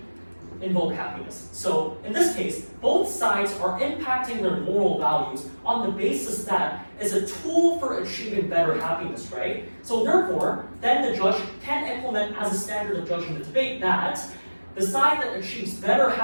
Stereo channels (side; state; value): both; inverted; correlation -1.00